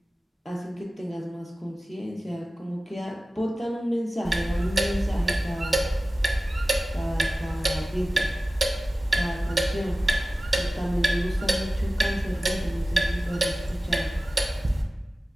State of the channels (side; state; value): both; normal; correlation 0.96